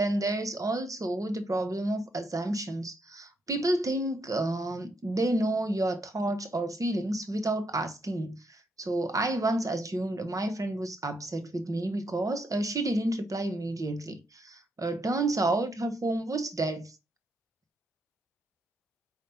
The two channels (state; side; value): normal; both; correlation 0.77